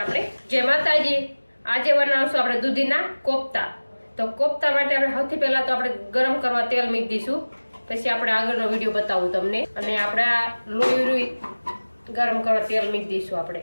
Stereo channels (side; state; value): both; inverted; correlation -1.00